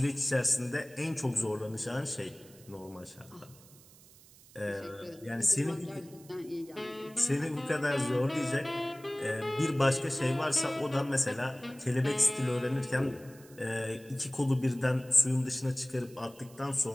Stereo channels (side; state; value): right; noise; hiss, 23 dB below the sound